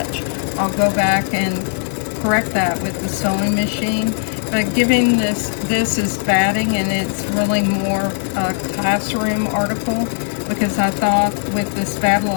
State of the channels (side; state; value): right; silent; 61 dB below the other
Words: I'll go back and correct that with the sewing machine. But giving this is batting, and it's really more a classroom article because I thought with this